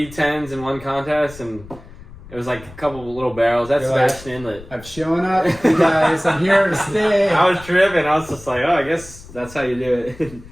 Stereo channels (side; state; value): left; noise; rumble, 18 dB below the sound